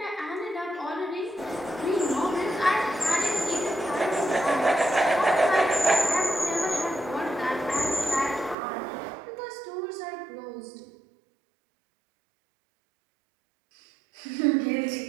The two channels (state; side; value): drops out; left; at 8.6 s